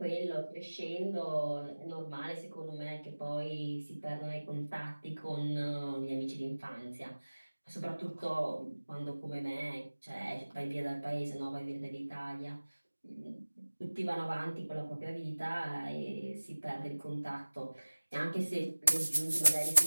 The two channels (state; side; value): inverted; both; correlation -1.00